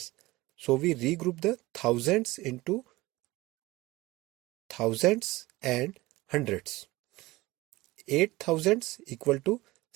So we regroup the thousands into thousands and hundreds. 8 thousands equal to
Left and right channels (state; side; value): quieter; left; 19.9 dB